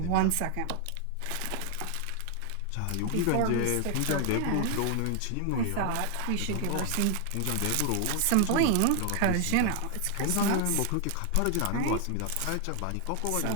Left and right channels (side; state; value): both; different; correlation 0.00